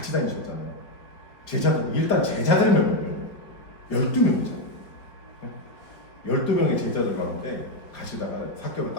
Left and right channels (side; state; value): right; late; 4.6 ms